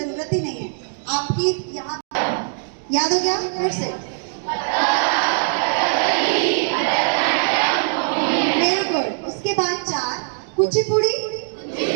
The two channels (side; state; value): left; silent; digital silence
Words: ही नहीं है। आपकी यहाँ याद हो गया? फिर से वेरी गुड। उसके बाद 4 कुचिपुड़ी,